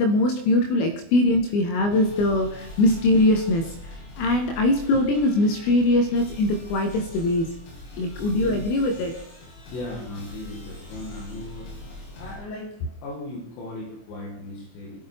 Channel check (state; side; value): late; right; 24 ms